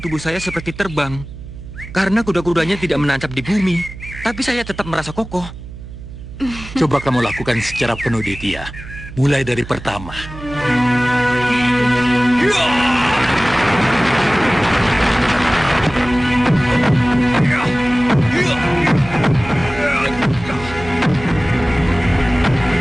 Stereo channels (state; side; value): noise; right; hum, 13 dB below the sound